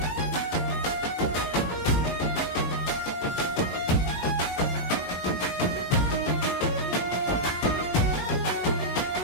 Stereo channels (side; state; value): right; late; 19 ms